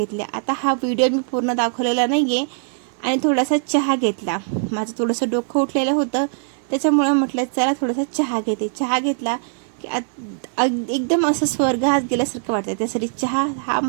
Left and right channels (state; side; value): silent; left; digital silence